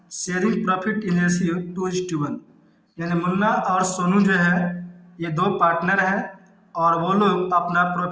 sharing profit in ratio 2:1। यानी मुन्ना और सोनू जो है ये 2 पार्टनर हैं और वो लोग अपना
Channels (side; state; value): both; identical; correlation 1.00